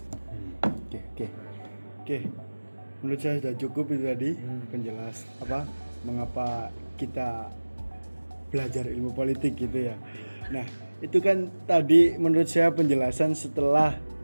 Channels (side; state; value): both; inverted; correlation -1.00